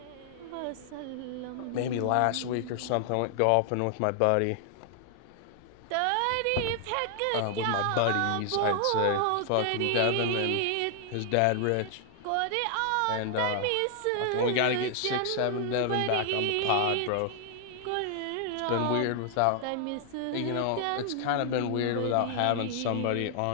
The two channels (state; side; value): different; both; correlation 0.00